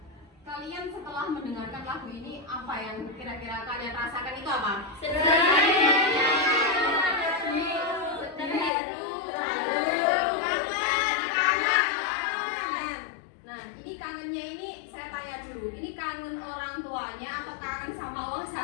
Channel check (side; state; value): right; drops out; at 8.7 s